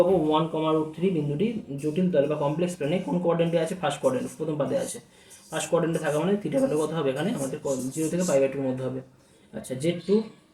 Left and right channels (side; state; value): both; identical; correlation 1.00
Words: ওয়ান কমা রুট থ্রি বিন্দুটি জটিল তল বা কমপ্লেক্স প্লেনে কোন কোয়াড্রেন্টে আছে ফার্স্ট কোয়াড্রেন্ট, প্রথম পাদে আছে। ফার্স্ট কোয়াড্রেন্টে থাকা মানে থিটা ভ্যালু কত হবে এখানে আমাদের জিরো থেকে পাই বাই টুর মধ্যে হবে। আচ্ছা Z two